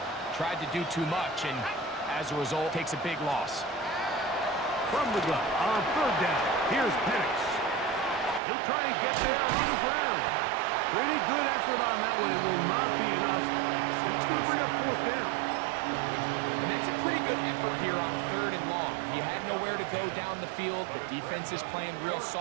tried to do too much, and as a result, takes a big loss. From the gun on third down, here's Penix. He'll try and get there on the ground. Pretty good effort on that one. It will not be enough. It's going to bring up fourth down. And that's a pretty good effort here on third and long. He had nowhere to go down the field. The defense is playing real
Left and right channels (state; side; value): drops out; left; at 8.4 s